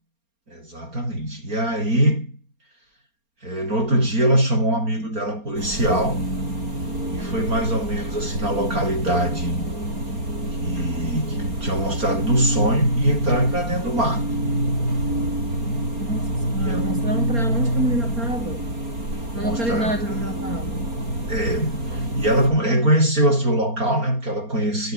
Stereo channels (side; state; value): left; late; 4.3 ms